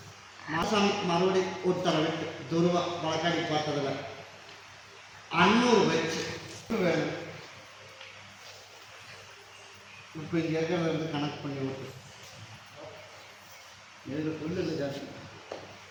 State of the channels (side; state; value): both; identical; correlation 1.00